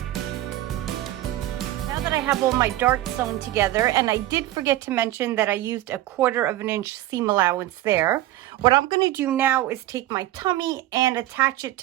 I have all my darts sewn together, and I did forget to mention that I used a 1/4 inch seam allowance there. What I'm going to do now is take my tummy and attach it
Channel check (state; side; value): quieter; left; 15.1 dB